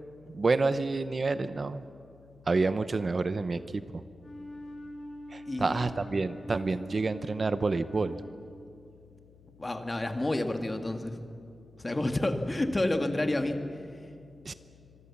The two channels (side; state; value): left; noise; hum, 25 dB below the sound